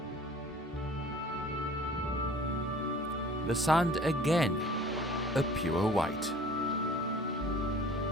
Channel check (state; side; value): normal; both; correlation 0.48